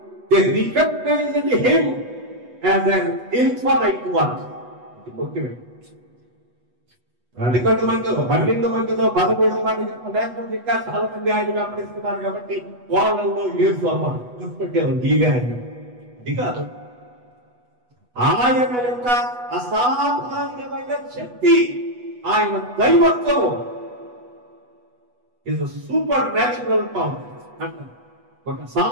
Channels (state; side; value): late; left; 8.1 ms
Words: They recognized him as an infinite one. ఇది ముఖ్యమైన. అందుకంటే మందిలో 12 మందిలో 13 మంది లేకపోతే ఇంకా చాలా మంది ఆయన వెంబడిస్తున్నారు కాబట్టి వాళ్ళలో యేసు అమ్మ గుర్తుపెట్టారు. ఈగా అది కాదు, ఆయన యొక్క అసాధారణమైన శక్తి, ఆయన దైవత్వం ఇస్ సూపర్ న్యాచురల్ పవర్ అంటారు. ఒక